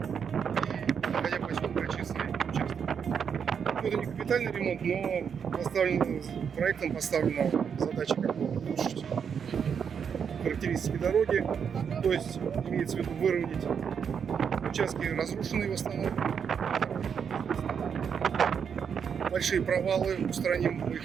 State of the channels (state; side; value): quieter; left; 7.1 dB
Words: и находя поселка Честный участок. Это не капитальный ремонт, но проектом поставлена задача как бы улучшить характеристики дороги, то есть имеется в виду выровнять участки разрушенные в основном, большие провалы устраним, мы